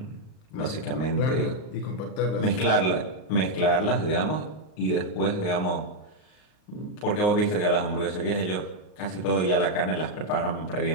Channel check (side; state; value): right; late; 39 ms